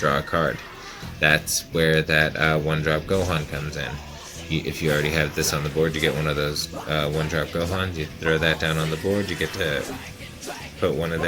a card. That's where that 1-drop Gohan comes in. If you already have this on the board, you get one of those 1-drop Gohans. You throw that down on the board, you get to put one of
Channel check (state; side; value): identical; both; correlation 1.00